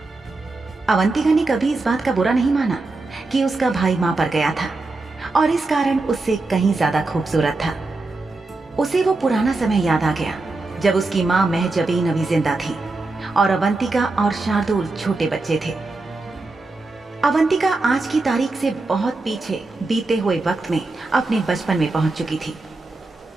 अवंतिका ने कभी इस बात का बुरा नहीं माना कि उसका भाई मां पर गया था और इस कारण उससे कहीं ज्यादा खूबसूरत था। उसे वो पुराना समय याद आ गया जब उसकी मां महजबीन अभी जिंदा थी और अवंतिका और शार्दुल छोटे बच्चे थे। अवंतिका आज की तारीख से बहुत पीछे बीते हुए वक्त में अपने बचपन में पहुंच चुकी थी।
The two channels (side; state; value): left; quieter; 3.3 dB